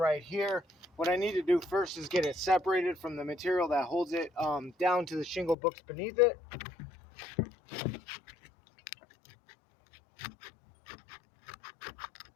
here. What I need to do first is get it separated from the material that holds it down to the shingle books beneath it.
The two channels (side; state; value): right; drops out; at 5.6 s